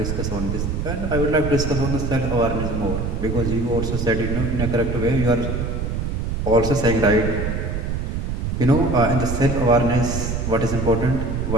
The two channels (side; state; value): right; noise; rumble, 2 dB below the sound